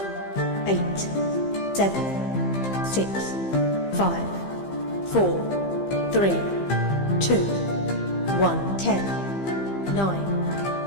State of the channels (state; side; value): late; right; 15 ms